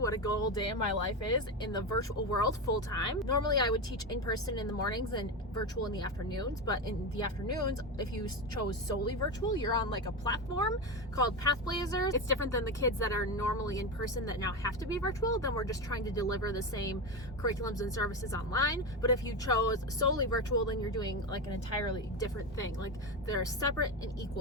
a good old day in my life is in the virtual world full time. Normally I would teach in person in the mornings and virtual in the afternoons, but in the afternoons, if you chose solely virtual, you're on like a platform called Pathblazers. It's different than the kids that are normally in person that now have to be virtual. Then we're just trying to deliver the same curriculums and services online. But if you chose solely virtual, then you're doing like an entirely different thing. Like they're separate and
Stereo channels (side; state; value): both; normal; correlation 0.17